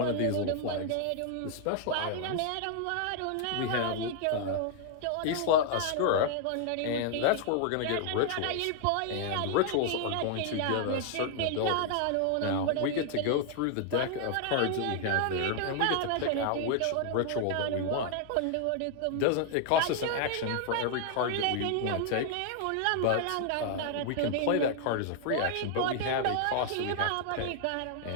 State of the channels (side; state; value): both; different; correlation 0.00